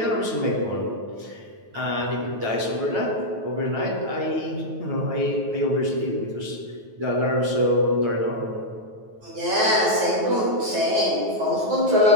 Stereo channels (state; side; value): late; left; 9.3 ms